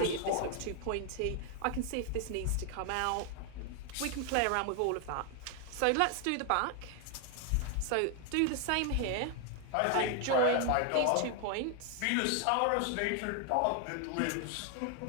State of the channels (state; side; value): different; both; correlation 0.00